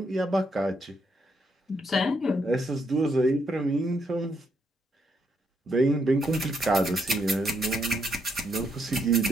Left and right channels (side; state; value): both; normal; correlation 0.76